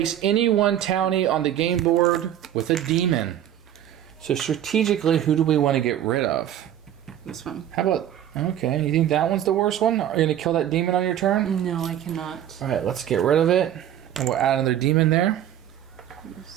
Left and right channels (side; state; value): left; quieter; 11.0 dB